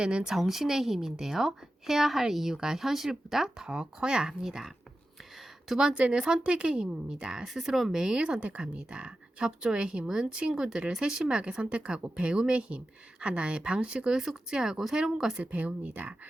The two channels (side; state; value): both; normal; correlation 0.92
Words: 정신의 힘인데요. 해야 할 이유가 현실보다 더 커야 합니다. 두 번째는 선택의 힘입니다. 스스로 매일 선택합니다. 협조의 힘은 친구들을 세심하게 선택하고 배움의 힘, 하나의 방식을 숙지하고 새로운 것을 배웁니다.